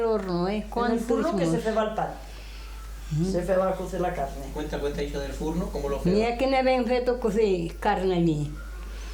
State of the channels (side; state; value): both; identical; correlation 1.00